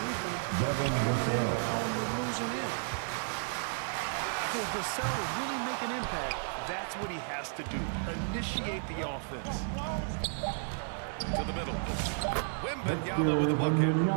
defense, Devin Vassell. you're losing in. If Vassell is really make an impact, that's what he has to do. Initiate the offense. To the middle. Wembanyama with a bucket.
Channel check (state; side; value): silent; left; digital silence